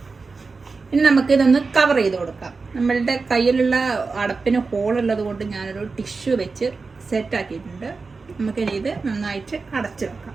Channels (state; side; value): quieter; left; 4.3 dB